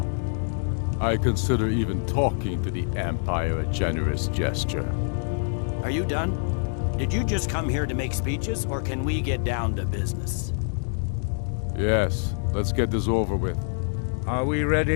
I consider even talking to the Empire a generous gesture. Are you done? Did you just come here to make speeches, or can we get down to business? Yes, let's get this over with. Are we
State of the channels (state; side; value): silent; right; digital silence